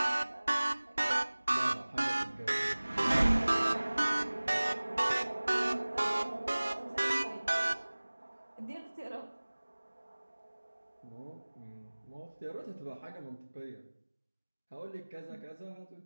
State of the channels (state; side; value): inverted; both; correlation -1.00